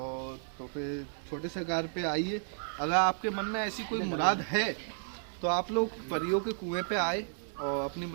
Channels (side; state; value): left; silent; digital silence